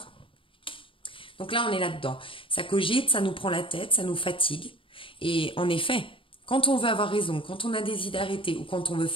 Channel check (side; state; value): right; late; 0.25 ms